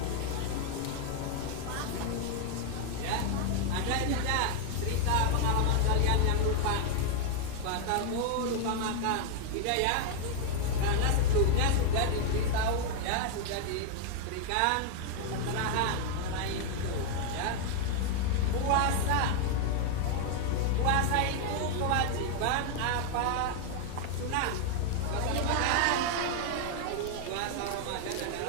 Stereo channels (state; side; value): different; both; correlation 0.00